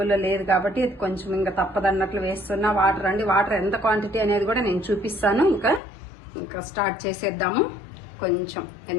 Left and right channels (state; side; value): drops out; right; at 5.8 s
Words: లేదు కాబట్టి ఇది కొంచెం ఇంకా తప్పదన్నట్లు వేస్తున్నా. వాటర్ అండి, వాటర్ ఎంత క్వాంటిటీ అనేది కూడా నేను చూపిస్తాను. ఇంకా స్టార్ట్ చేసేద్దాము. కొంచెం,